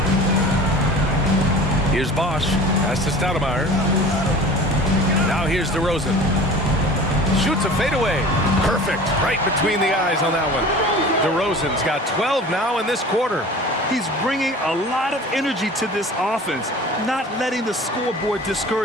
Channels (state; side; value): normal; both; correlation 0.41